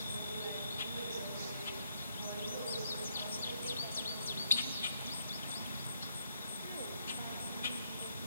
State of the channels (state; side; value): inverted; both; correlation -0.75